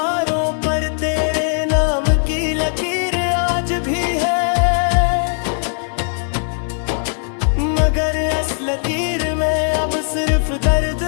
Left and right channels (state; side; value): silent; right; digital silence